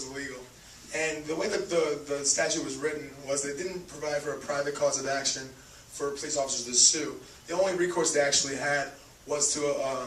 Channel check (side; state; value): both; identical; correlation 1.00